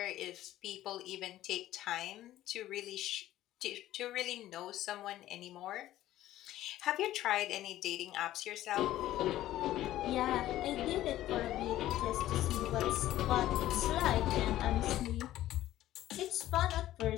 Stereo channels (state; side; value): quieter; right; 14.1 dB